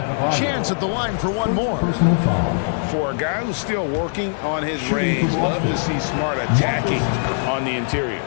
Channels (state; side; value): silent; right; digital silence